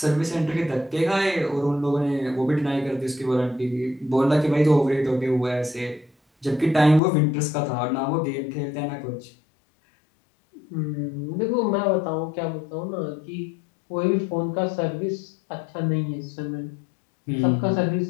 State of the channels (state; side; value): drops out; right; at 7.0 s